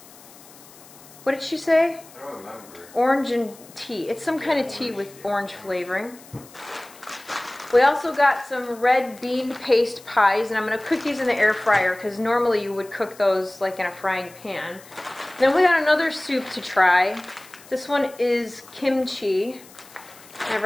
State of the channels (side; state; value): left; noise; hiss, 22 dB below the sound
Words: What did she say? I don't remember. Orange and tea. It's some kind of tea with orange flavoring. We also got some red bean paste pies, and I'm going to cook these in the air fryer because normally you would cook those like in a frying pan. Then we got another soup to try. This one is kimchi.